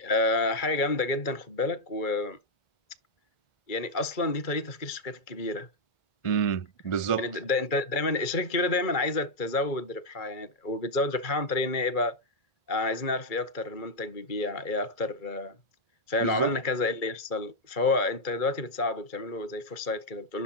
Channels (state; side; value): late; right; 2.3 ms